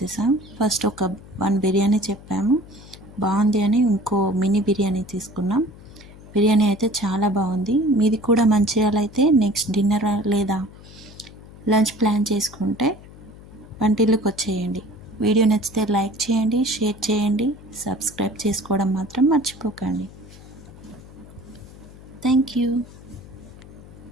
ఫస్ట్ ఒక 1 బిర్యానీ చెప్పాము, బాగుంది అని ఇంకో మినీ బిర్యానీ తీసుకున్నాం. బిర్యానీ అయితే చాలా బాగుంది. మీది కూడా మంచిర్యాల అయితే నెక్స్ట్ డిన్నర్ లేదా లంచ్ ప్లాన్ చేసుకుంటే వంటిల్లుకి వచ్చేయండి. వీడియో నచ్చితే లైక్ చేయండి, షేర్ చేయండి, సబ్స్క్రైబ్ చేసుకోవడం మాత్రం మర్చిపోకండి. Thank you.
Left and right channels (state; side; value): noise; left; hum, 19 dB below the sound